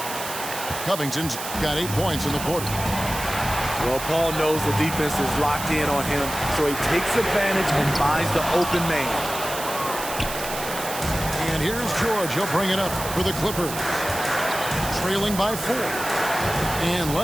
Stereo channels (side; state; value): right; noise; hiss, 8 dB below the sound